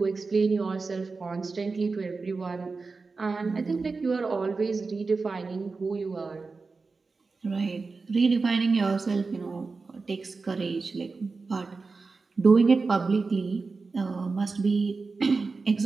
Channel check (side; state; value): left; quieter; 4.2 dB